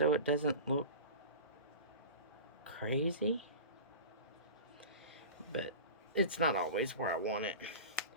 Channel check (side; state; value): both; inverted; correlation -0.32